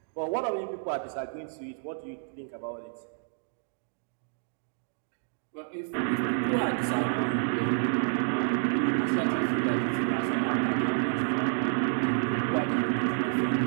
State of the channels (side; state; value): left; silent; digital silence